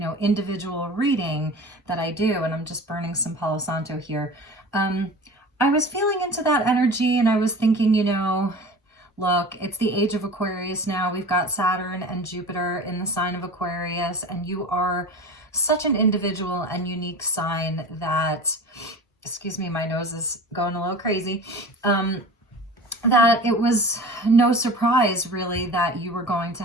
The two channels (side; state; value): both; normal; correlation 0.37